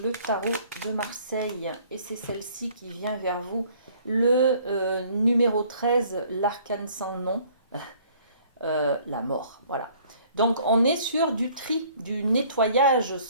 le tarot de Marseille. Et c'est celle-ci qui vient vers vous. Le numéro 13, l'arcane sans nom, la mort. Voilà. Donc on est sur du tri, du nettoyage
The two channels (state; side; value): inverted; both; correlation -0.57